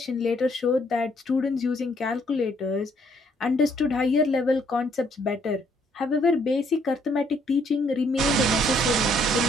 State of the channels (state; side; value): normal; both; correlation 0.67